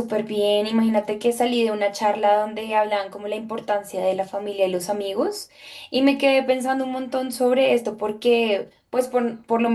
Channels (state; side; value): identical; both; correlation 1.00